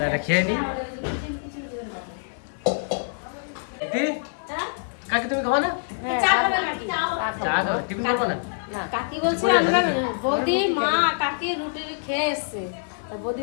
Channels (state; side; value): silent; right; 62 dB below the other